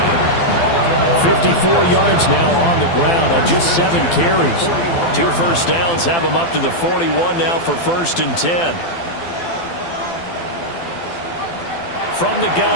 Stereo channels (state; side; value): late; right; 12 ms